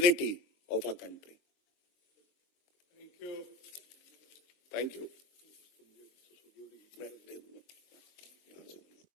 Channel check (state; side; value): late; right; 23 ms